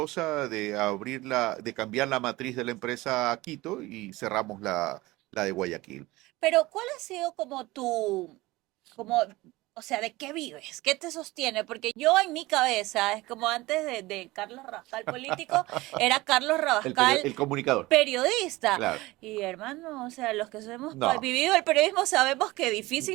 de de cambiar la matriz de la empresa a Quito y cerramos la de Guayaquil. Pero ¿cuál ha sido como como, o sea, de qué vives? ¿Qué te sostiene? Porque yo en mi cabeza, es como antes de Carlos Rabascal político, era Carlos Rabascal El comunicador, periodista. claro. Y hermano, o sea, los que hemos No, vivido el periodismo sabemos que es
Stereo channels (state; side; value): quieter; left; 20.0 dB